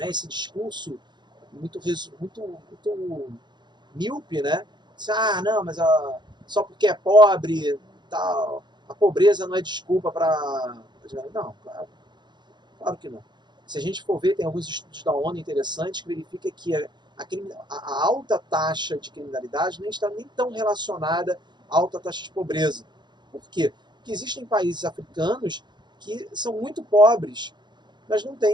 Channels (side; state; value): left; late; 0.21 ms